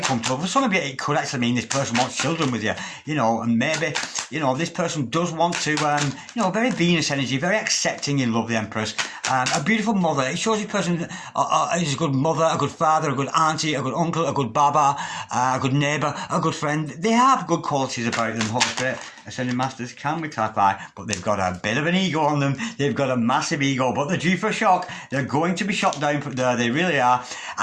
comfortable. For some of you, it could actually mean this person wants children with you, you know, and maybe, you know, this person does want to, you know, very Venus energy, very accepting in love, the Empress. a beautiful mother. It shows this person is a good mother, a good father, a good auntie, a good uncle, a good baba, a good neighbour, a good friend. They have good qualities about them, Holy Spirit. Ascending Masters can be clarified, but they've got a bit of an ego on them. They've got a massive ego, but they're due for a shock. They're going to be shot down from there. They really are.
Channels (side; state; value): both; identical; correlation 1.00